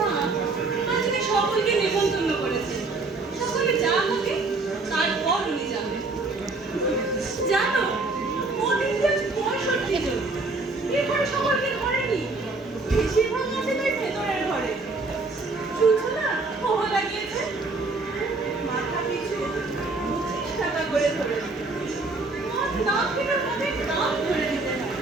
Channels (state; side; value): quieter; left; 3.5 dB